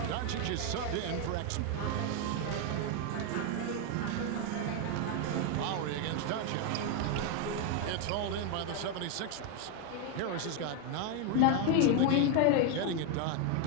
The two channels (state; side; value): different; both; correlation 0.01